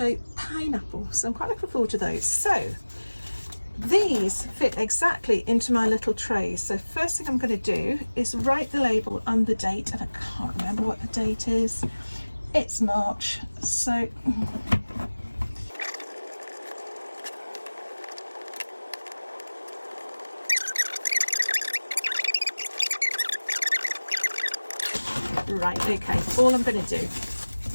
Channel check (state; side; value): inverted; both; correlation -1.00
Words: pineapple. So I'm quite looking forward to those. So these fit exactly into my little tray. So first thing I'm going to do is write the label and the date, and I can't remember what the date is. It's March, so right, okay, all I'm going to do,